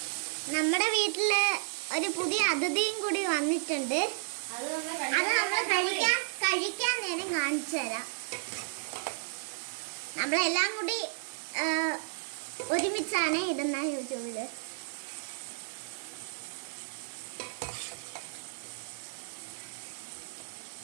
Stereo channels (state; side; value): silent; left; digital silence